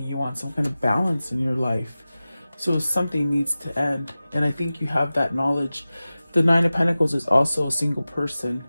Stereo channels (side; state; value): both; inverted; correlation -0.96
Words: you want some kind of balance in your life. So something needs to end. And I think you have that knowledge. The Nine of Pentacles is also a single person.